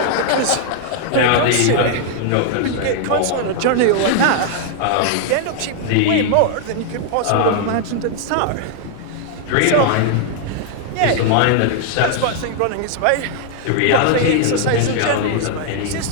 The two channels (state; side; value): different; both; correlation 0.00